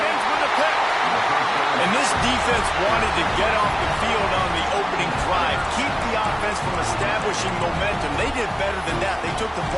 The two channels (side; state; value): both; identical; correlation 1.00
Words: with a pick. And this defense wanted to get off the field on the opening drive, keep the offense from establishing momentum. They did better than that. They took the